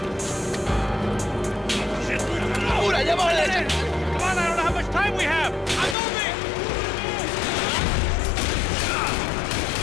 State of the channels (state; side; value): drops out; right; at 6.0 s